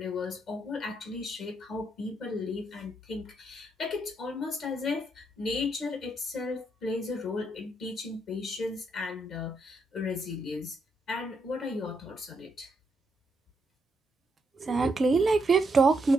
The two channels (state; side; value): normal; both; correlation 0.78